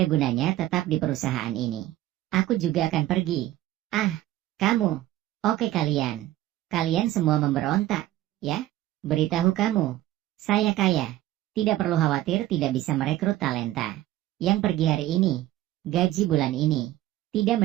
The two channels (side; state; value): left; quieter; 14.8 dB